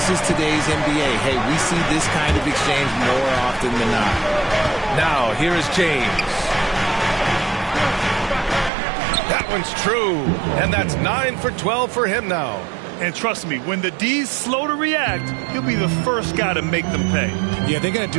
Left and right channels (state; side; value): drops out; left; at 8.7 s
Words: is today's NBA. Hey, we see this kind of exchange more often than not. Now, here is James. That one's true. And that's 9 for 12 for him now. And trust me, when the D's slow to react, he'll be the first guy to make them pay. Yeah, they're going to